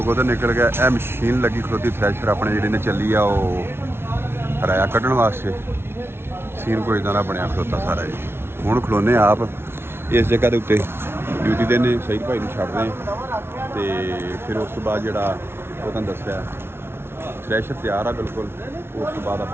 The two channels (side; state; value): left; late; 0.12 ms